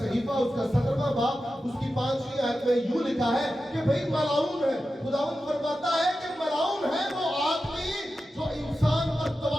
اس کا 17واں باب اس کی 5ویں آیت میں یوں لکھا ہے کہ بھئی ملعون ہے. خداوند فرماتا ہے کہ ملعون ہے وہ آدمی جو انسان پر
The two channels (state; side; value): normal; both; correlation 0.92